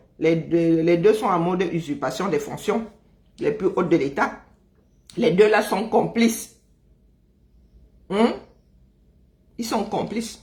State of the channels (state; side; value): identical; both; correlation 1.00